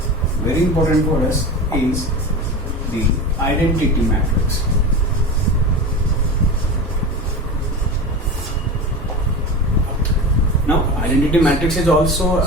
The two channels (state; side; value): normal; both; correlation 0.28